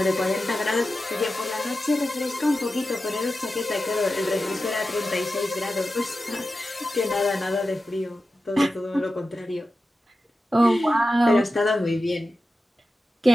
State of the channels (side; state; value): both; normal; correlation 0.92